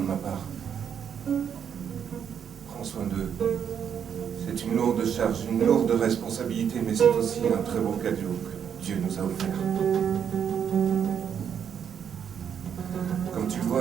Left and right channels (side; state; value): left; quieter; 8.0 dB